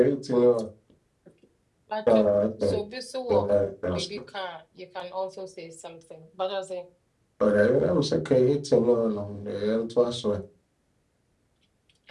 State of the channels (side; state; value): both; identical; correlation 1.00